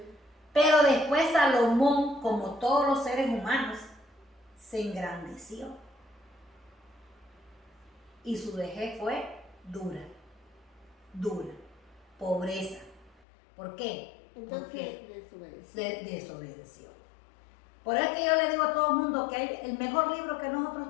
Pero después Salomón, como todos los seres humanos, se engrandeció. Y su vejez fue dura, pobreza. ¿Por qué? Entonces desobedeció. Por eso es que yo le digo a todo el mundo que el mejor libro que nosotros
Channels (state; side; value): drops out; right; at 13.2 s